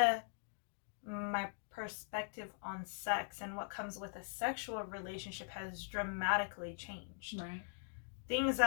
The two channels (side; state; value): right; silent; digital silence